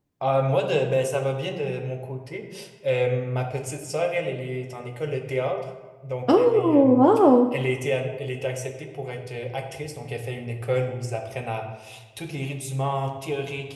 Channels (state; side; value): identical; both; correlation 1.00